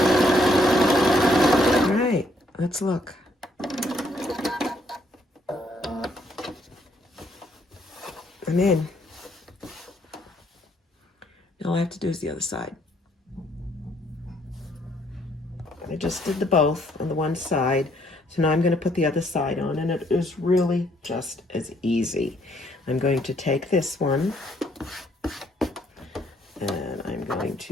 All right, let's look. I'm in. Now all I have to do is the other side. I just did the both on the one side. So now I'm going to put the other side on, and it is really just as easy. I'm going to take this one, and I'm going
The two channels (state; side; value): normal; both; correlation 0.69